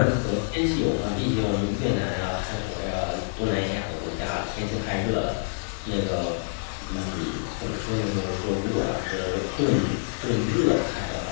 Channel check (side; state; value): right; silent; digital silence